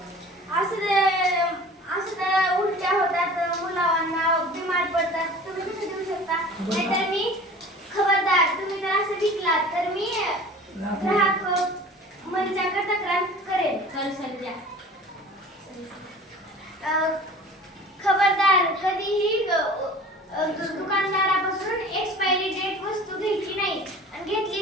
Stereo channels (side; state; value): both; normal; correlation 0.43